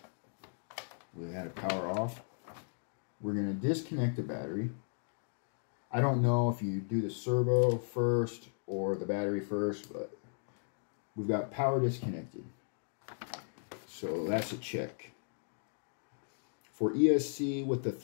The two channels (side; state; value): right; silent; digital silence